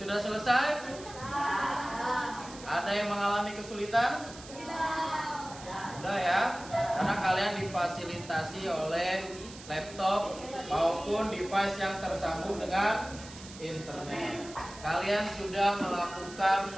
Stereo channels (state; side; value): noise; right; hiss, 16 dB below the sound